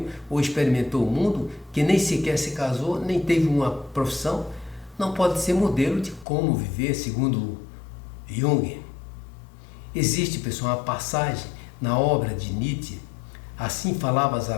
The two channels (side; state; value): right; drops out; at 6.2 s